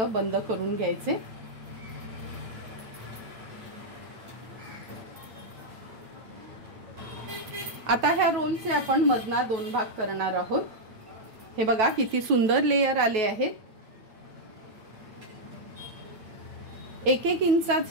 बंद करून घ्यायचे। आता ह्या रोलचे आपण मधना 2 भाग करणार आहोत। हे बघा किती सुंदर लेयर आले आहेत। 1-1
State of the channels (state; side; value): late; left; 9.3 ms